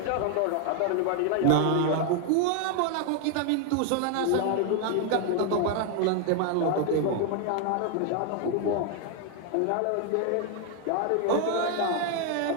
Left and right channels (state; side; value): different; both; correlation 0.01